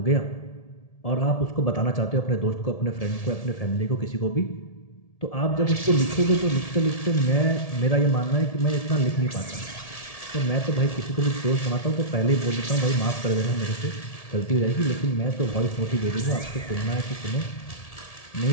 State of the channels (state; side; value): late; right; 1.7 ms